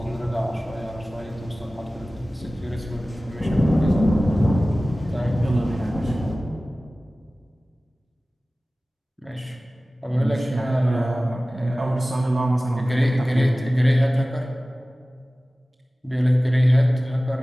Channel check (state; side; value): normal; both; correlation 0.97